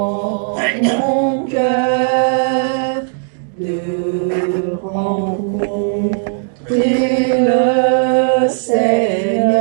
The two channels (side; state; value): left; silent; 69 dB below the other